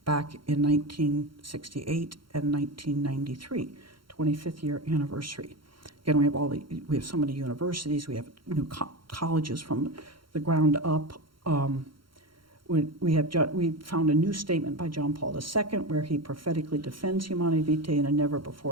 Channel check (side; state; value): left; late; 0.73 ms